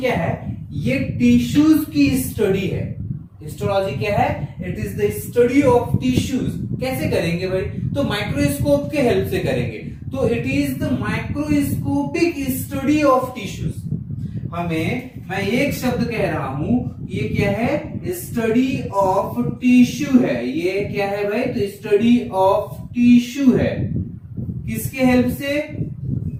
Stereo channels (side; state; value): both; identical; correlation 1.00